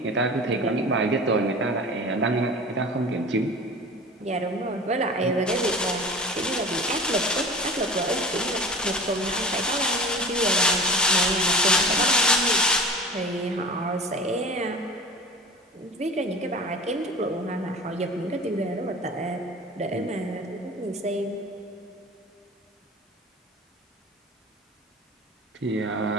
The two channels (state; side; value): normal; both; correlation 0.37